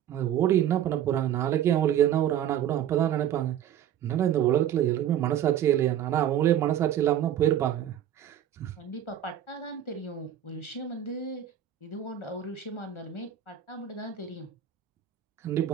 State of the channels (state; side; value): quieter; left; 10.6 dB